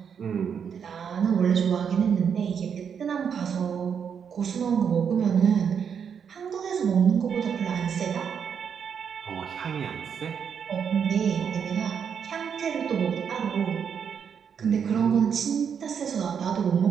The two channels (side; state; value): left; quieter; 7.3 dB